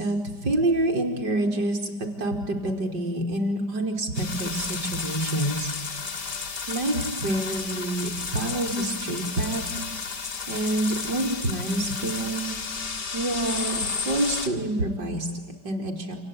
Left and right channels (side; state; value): left; late; 5.1 ms